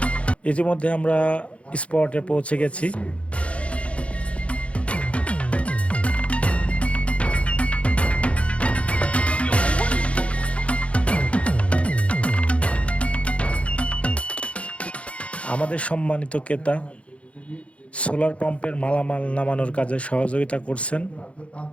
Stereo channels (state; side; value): late; right; 0.062 ms